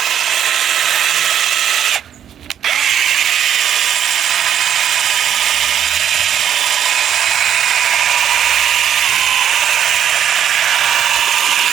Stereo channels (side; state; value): left; quieter; 9.3 dB